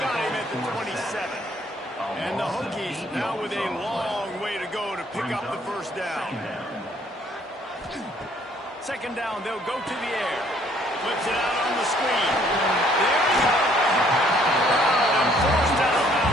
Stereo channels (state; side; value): normal; both; correlation 0.62